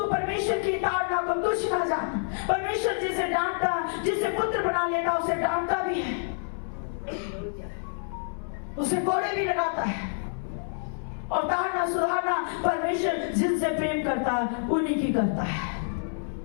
परमेश्वर की ताड़ना को तुच्छ ना जान। परमेश्वर जिसे डांटता, जिसे पुत्र बना लेता उसे डांटता भी है, उसे कोड़े भी लगाता है। और ताड़ना सुधारना परमेश्वर जिनसे प्रेम करता है उन्हीं की करता है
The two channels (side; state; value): right; silent; 60 dB below the other